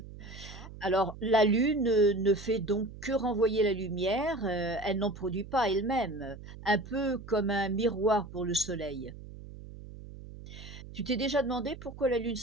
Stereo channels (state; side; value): noise; right; hum, 14 dB below the sound